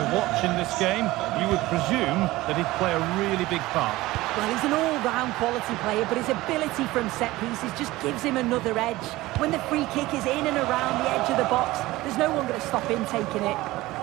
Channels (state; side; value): quieter; left; 18.5 dB